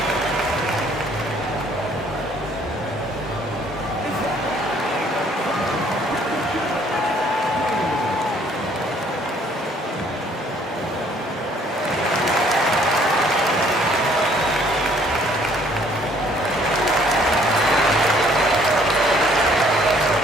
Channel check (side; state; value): both; normal; correlation 0.61